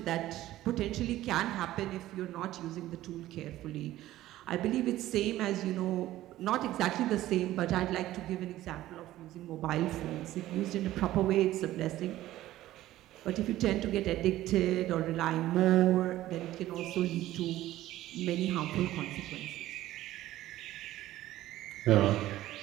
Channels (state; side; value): quieter; left; 14.9 dB